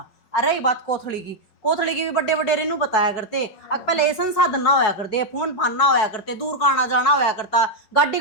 अरे रही बात कोथड़ी की भी बड़े बड़े रेनू बताया करते अब पहले ये संसाधन ना होया करते फोन फान ना होया करते दूर का आना जाना होया करता गाड़ी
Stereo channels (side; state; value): right; late; 5.4 ms